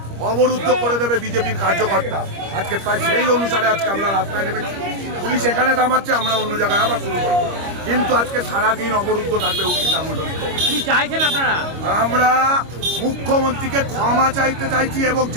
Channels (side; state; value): left; late; 25 ms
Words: অবরুদ্ধ করে দেবে বিজেপির কার্যকর্তা। আজকে তাই সেই অনুসারে আজকে আমরা রাস্তায় নেমেছি। পুলিশ এখানে থামাচ্ছে, আমরা অন্য জায়গায় আবার শুরু করব। কিন্তু আজকে সারাদিন অবরুদ্ধ থাকবে হুগলি সাংগঠনিক। কি চাইছেন আপনারা? আমরা মুখ্যমন্ত্রীকে ক্ষমা চাইতে চাইছি এবং